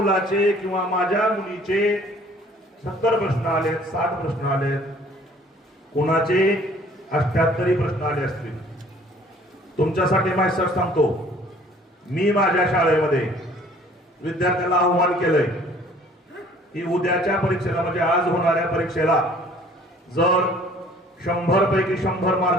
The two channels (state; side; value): normal; both; correlation 0.55